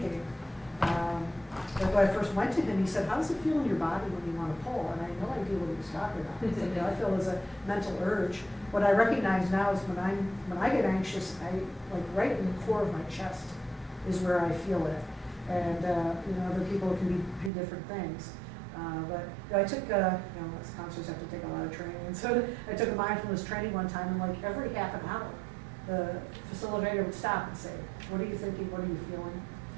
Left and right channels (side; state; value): left; drops out; at 17.5 s